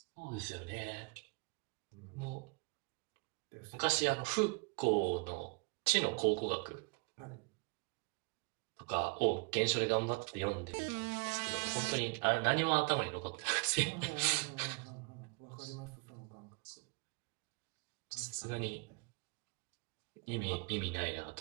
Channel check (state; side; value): quieter; left; 31.1 dB